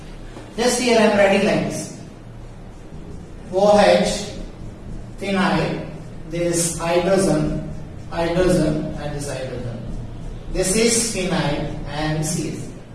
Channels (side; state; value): both; identical; correlation 1.00